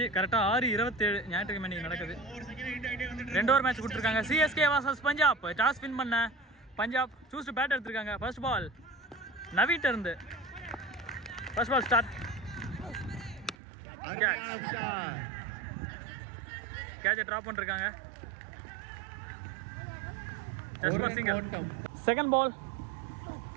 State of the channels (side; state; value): left; drops out; at 13.6 s